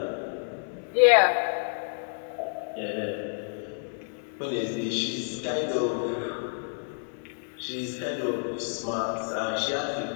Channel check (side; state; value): right; silent; digital silence